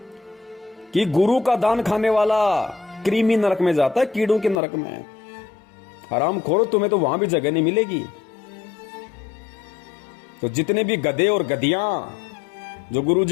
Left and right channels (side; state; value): right; drops out; at 4.6 s